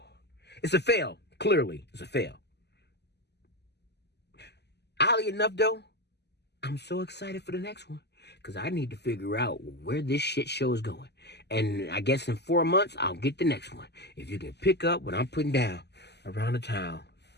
It's a fail. Clearly, it's a fail. Oddly enough, though, I'm so excited for the next one. Because I need to figure out where this shit show is going. And I guess in 4 months, I'll get the next one. If you can pick up what I'm putting down around the town.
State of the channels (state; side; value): late; right; 0.49 ms